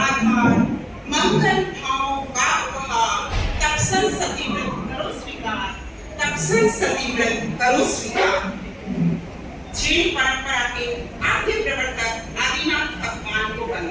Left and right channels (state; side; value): identical; both; correlation 1.00